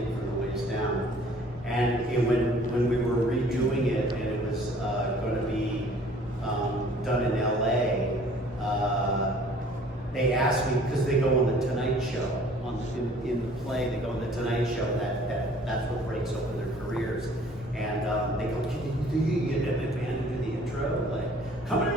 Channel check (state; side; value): normal; both; correlation 0.54